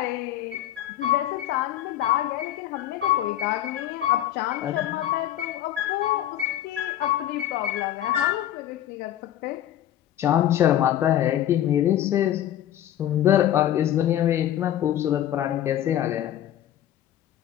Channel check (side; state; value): right; quieter; 12.0 dB